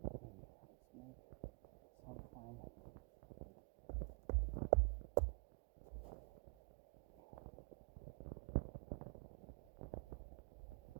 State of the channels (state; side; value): quieter; left; 34.6 dB